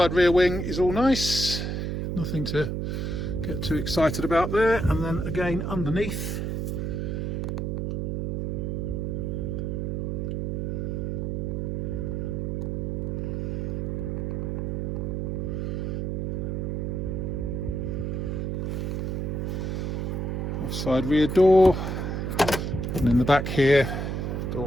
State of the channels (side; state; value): right; noise; hum, 1 dB below the sound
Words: rear wing is all nice. Nothing to get too excited about there. And then again underneath, offside rear door, and in the back here,